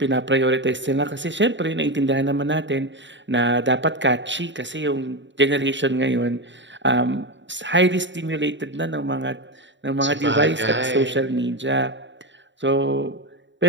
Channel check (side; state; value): left; late; 0.53 ms